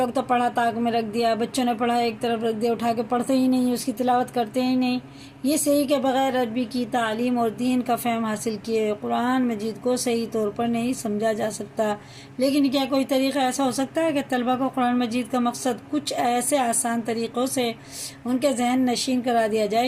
تو پڑھا تاک میں رکھ دیا، بچوں نے پڑھا ایک طرف رکھ دیا، اٹھا کے پڑھتے ہی نہیں، اس کی تلاوت کرتے ہی نہیں۔ یہ صحیح کہ بغیر عربی کی تعلیم اور دین کا فہم حاصل کیے قرآن مجید کو صحیح طور پر نہیں سمجھا جا سکتا، لیکن کیا کوئی طریقہ ایسا ہو سکتا ہے کہ طلبہ کو قرآن مجید کا مقصد کچھ ایسے آسان طریقوں سے ان کے ذہن نشین کرا دیا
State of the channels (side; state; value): both; identical; correlation 1.00